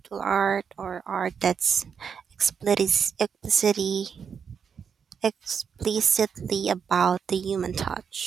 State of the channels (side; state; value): left; quieter; 6.8 dB